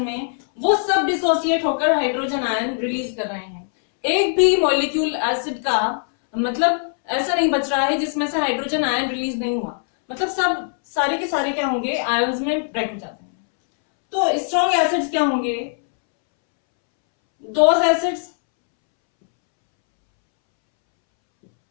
में, वो सब डिसोसिएट होकर हाइड्रोजन आयन रिलीज कर रहे हैं। एक भी मॉलिक्यूल एसिड का मतलब ऐसा नहीं बच रहा है जिसमें से हाइड्रोजन आयन रिलीज नहीं हुआ, मतलब सब सारे के सारे क्या होंगे, आयंस में ब्रेक हो जाते हैं। तो स्ट्रॉन्ग एसिड्स क्या होंगे, those acids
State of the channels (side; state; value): right; silent; 65 dB below the other